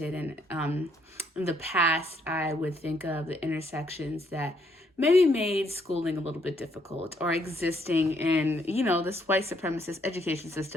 And in the past, I would think of the intersections that maybe made schooling a little bit difficult, or existing in, this white supremacist education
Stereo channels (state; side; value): normal; both; correlation 0.70